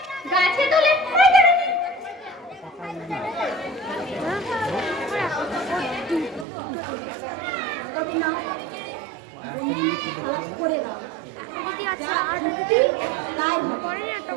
গাছে তোলে পরে কেটে দিই। তবে না, তুমি খালাস করে দাও। তাই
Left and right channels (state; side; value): drops out; left; at 6.5 s